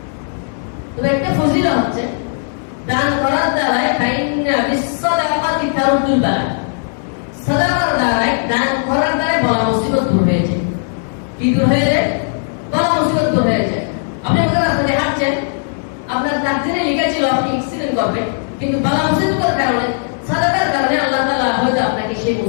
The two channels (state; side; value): silent; right; digital silence